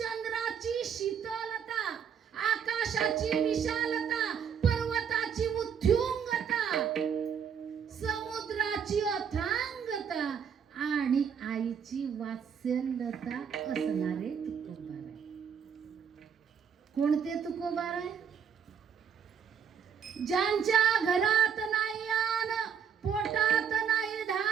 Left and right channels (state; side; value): quieter; left; 7.5 dB